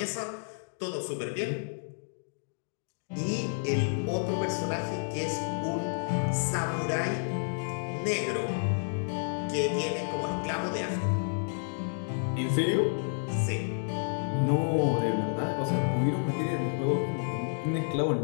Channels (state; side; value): silent; right; digital silence